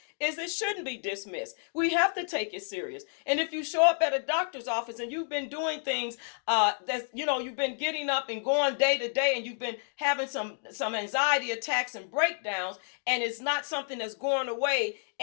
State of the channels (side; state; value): right; silent; 58 dB below the other